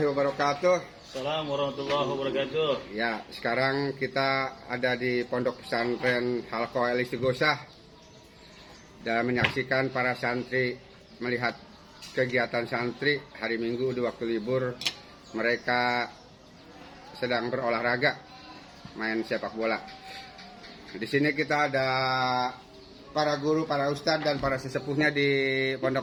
wabarakatuh. Assalamualaikum warahmatullahi wabarakatuh. Ya, sekarang kita ada di Pondok Pesantren Halqa Al-Istighosah dan menyaksikan para santri melihat kegiatan santri hari Minggu di waktu libur. Mereka sedang berolahraga, main sepak bola. Di sini kita ada para guru, para ustadz dan para sesepuhnya di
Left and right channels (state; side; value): identical; both; correlation 1.00